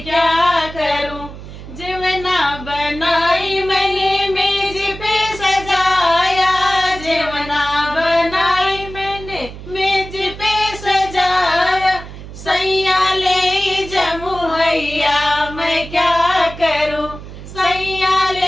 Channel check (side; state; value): right; noise; hum, 13 dB below the sound